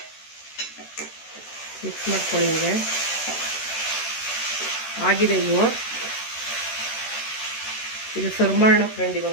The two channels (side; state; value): right; late; 13 ms